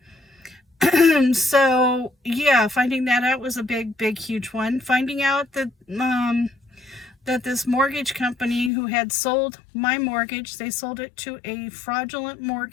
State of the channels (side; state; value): right; drops out; at 8.7 s